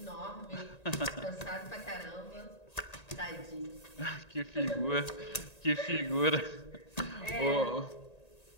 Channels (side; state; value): right; late; 1.9 ms